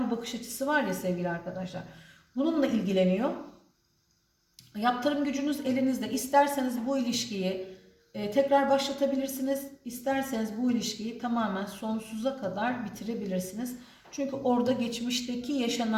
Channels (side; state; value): both; identical; correlation 1.00